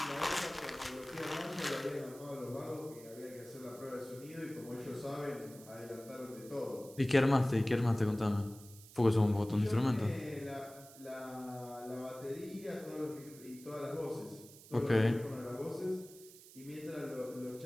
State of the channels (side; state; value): right; noise; hiss, 19 dB below the sound